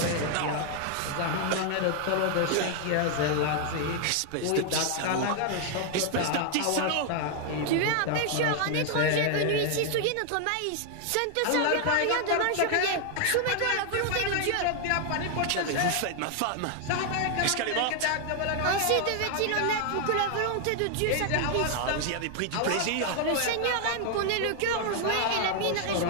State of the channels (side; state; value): both; different; correlation 0.00